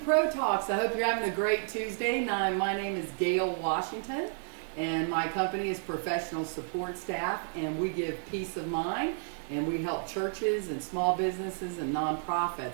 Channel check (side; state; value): left; silent; digital silence